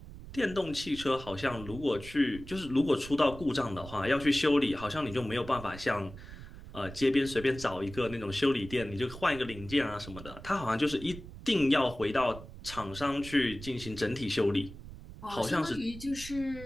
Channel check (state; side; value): noise; right; rumble, 14 dB below the sound